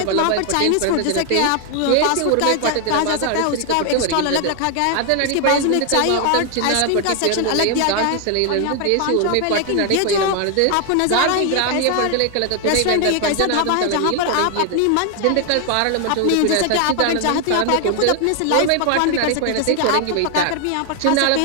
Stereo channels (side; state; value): both; different; correlation 0.00